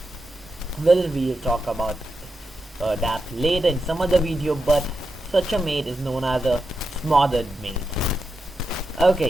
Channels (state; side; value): normal; both; correlation 0.87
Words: Well, we'll talk about that later in some other video, but such a mate is known as a smothered mate.